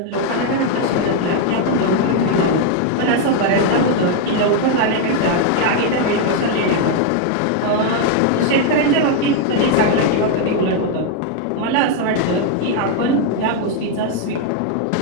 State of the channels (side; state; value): both; different; correlation 0.00